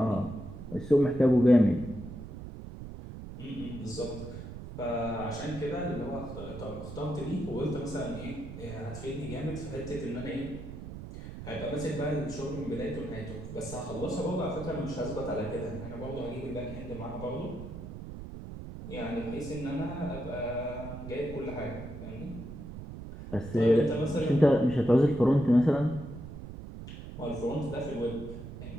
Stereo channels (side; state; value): right; noise; rumble, 11 dB below the sound